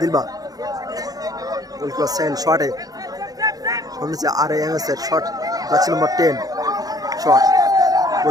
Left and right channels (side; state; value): left; late; 0.18 ms